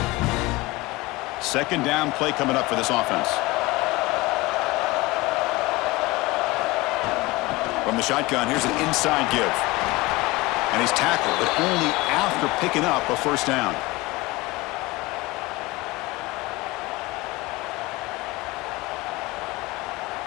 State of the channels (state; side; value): quieter; right; 21.3 dB